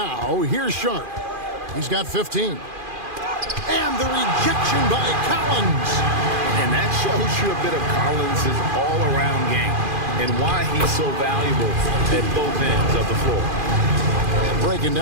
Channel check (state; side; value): late; left; 2.4 ms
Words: here's Sharp. He's got 15. And the rejection by Collins. And that shows you a bit of Collins' all-around game and why he's so valuable at both ends of the floor. And breaking